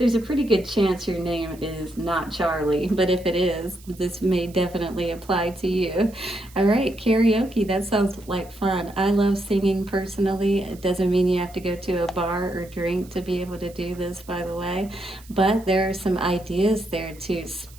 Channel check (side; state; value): right; noise; hiss, 24 dB below the sound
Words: a pretty good chance your name is not Charlie, but if it is, this may definitely apply to you. All right, karaoke, that sounds like fun. I love singing personally. It doesn't mean you have to go to a bar or drink to be able to do this, by the way, but there are some ideas there to